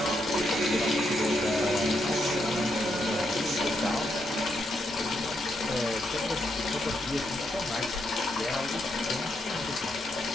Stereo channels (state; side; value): normal; both; correlation 0.79